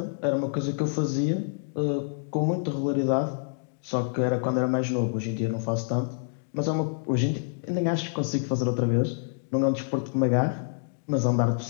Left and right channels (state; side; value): silent; right; digital silence